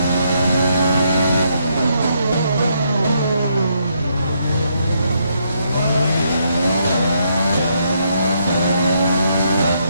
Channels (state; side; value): inverted; both; correlation -0.75